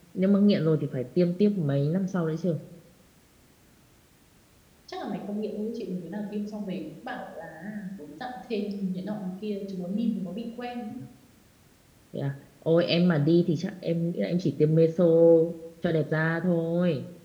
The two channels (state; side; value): identical; both; correlation 1.00